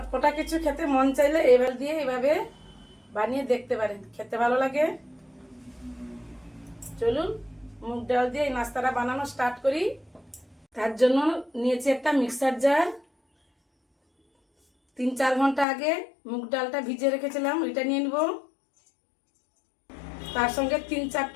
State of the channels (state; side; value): drops out; right; at 15.7 s